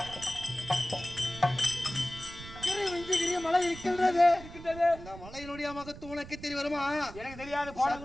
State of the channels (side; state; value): right; noise; rumble, 14 dB below the sound